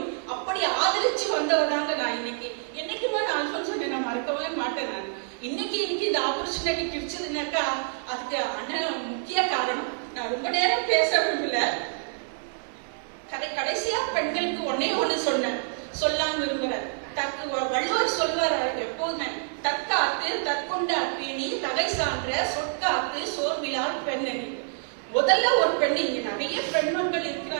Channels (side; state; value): left; silent; digital silence